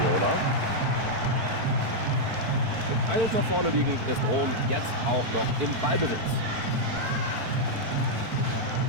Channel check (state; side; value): late; left; 4.5 ms